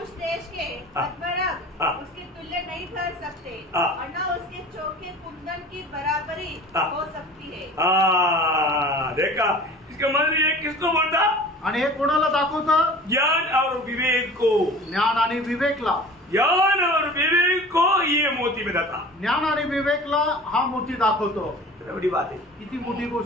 देश के पद्मराग उसके तुल्य नहीं ठहर सकते और न उसके चौके कुंदन की बराबरी हो सकती है। देखा, इसका मतलब ये किसको बोलता, आणि हे कोणाला दाखवतं, ज्ञान और विवेक को। ज्ञान आणि विवेकला। ज्ञान और विवेक को ये मोती बताता। ज्ञान आणि विवेकला हा मोती दाखवतो. कितना बड़ी बात है। किती मोठी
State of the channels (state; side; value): normal; both; correlation 0.42